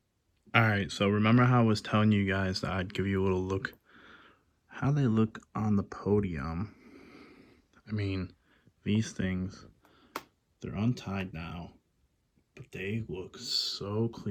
All right, so remember how I was telling you guys that I'd give you a little look how they look on the podium. I mean, these things, they're untied now, but they look so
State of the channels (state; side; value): identical; both; correlation 1.00